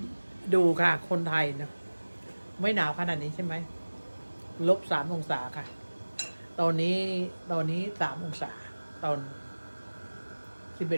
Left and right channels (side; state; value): both; inverted; correlation -1.00